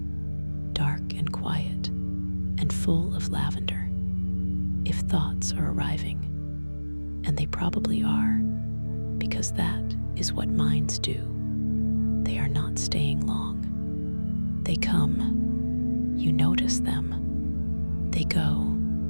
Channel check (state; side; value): inverted; both; correlation -1.00